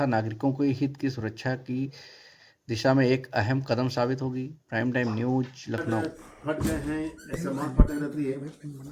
नागरिकों के हित की सुरक्षा की दिशा में एक अहम कदम साबित होगी। Prime time news Lucknow. फट गए हैं, ऐसा माल फटने रहती है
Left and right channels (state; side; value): identical; both; correlation 1.00